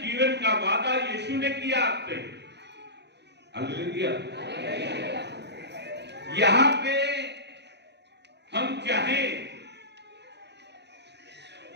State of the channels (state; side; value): late; left; 0.50 ms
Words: जीवन का वादा यीशु ने किया आपसे। हालेलुया। यहां पे हम चाहे,